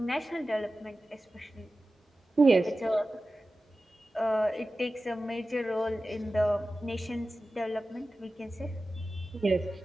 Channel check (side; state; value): both; normal; correlation 0.95